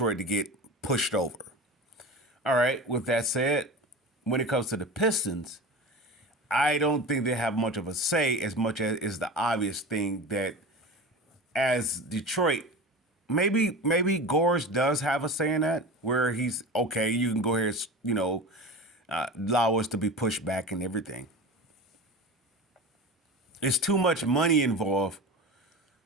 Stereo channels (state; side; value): normal; both; correlation 0.31